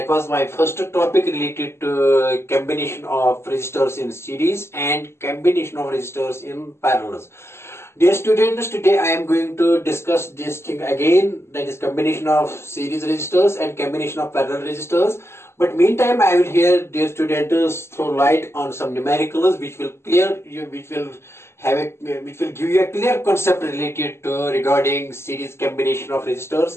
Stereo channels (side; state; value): right; late; 0.12 ms